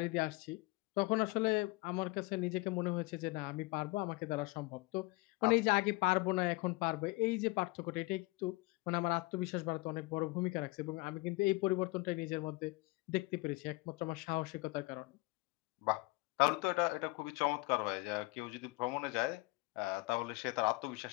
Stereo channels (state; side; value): quieter; right; 23.2 dB